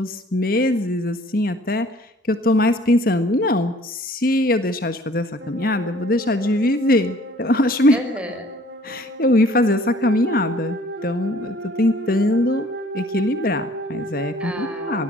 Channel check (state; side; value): normal; both; correlation 0.55